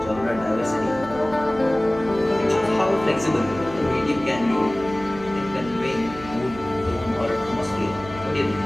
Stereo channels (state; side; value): noise; right; hum, 15 dB below the sound